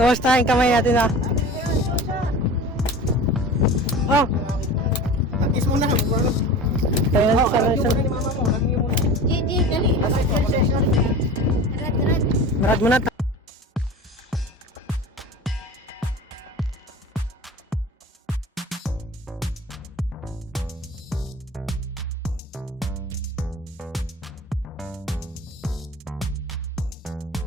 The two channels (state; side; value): normal; both; correlation 0.36